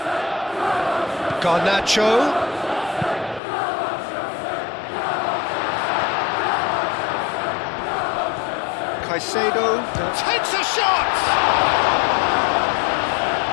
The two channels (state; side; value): drops out; right; at 3.4 s